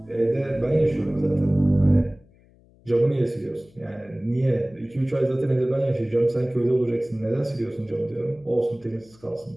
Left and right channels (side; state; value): left; noise; hum, 29 dB below the sound